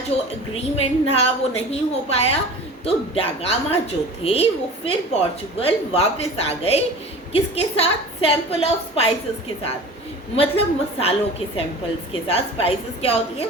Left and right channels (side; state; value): both; normal; correlation 0.38